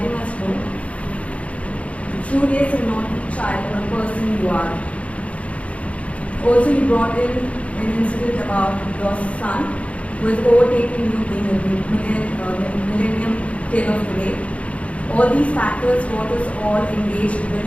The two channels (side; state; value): right; late; 0.064 ms